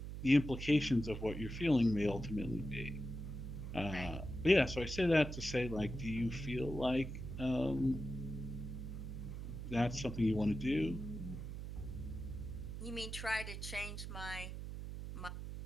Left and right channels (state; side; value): noise; right; hum, 7 dB below the sound